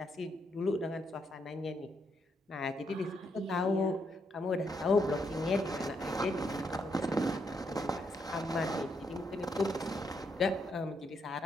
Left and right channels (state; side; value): normal; both; correlation 0.77